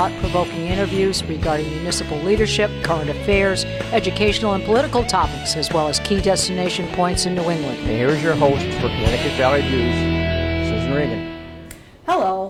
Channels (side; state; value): both; identical; correlation 1.00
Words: interviews regarding municipal leadership, current affairs, educational and political topics, as well as key destination points in New England. And here's your host for Connecticut Valley Views, Susan Regan.